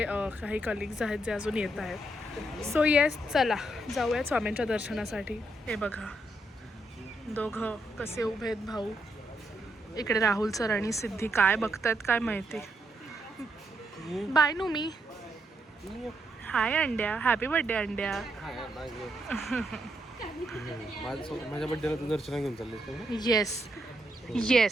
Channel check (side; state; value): both; normal; correlation 0.79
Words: काही कलिग्स आहेत जे अजून येत आहेत. सो येस, चला जाऊयात स्वामींच्या दर्शनासाठी. हे बघा दोघं कसे उभे आहेत भाऊ. इकडे राहुल सर आणि सिद्धी काय बघतायत काय माहिती. बाय नू मी. हाय अंड्या, हॅपी बर्थडे अंड्या. माझ्या बड्डेला तू दर्शन घेऊन चालले. Yes